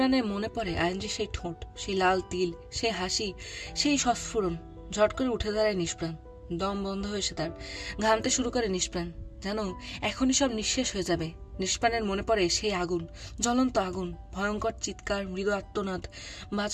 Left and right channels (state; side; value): identical; both; correlation 1.00